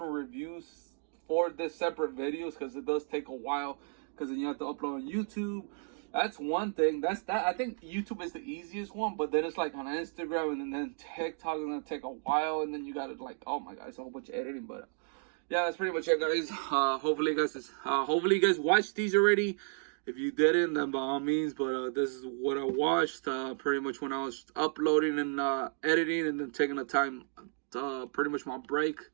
reviews, 4 separate videos, because it does take a while, because then you have to upload on YouTube. That's one thing. I think YouTube is the easiest one, but then it's like on Instagram, and then TikTok is gonna take a while, and then you gotta, like, oh my god, it's a whole bunch of editing. But yeah, that's pretty much it, guys. Hopefully you guys watched these already. If you didn't, then by all means. But this is what I watched pretty much when I was uploading and editing, and then taking the time pretty much my break.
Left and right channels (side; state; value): left; silent; 56 dB below the other